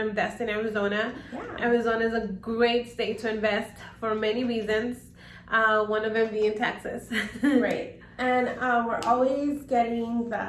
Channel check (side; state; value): both; identical; correlation 1.00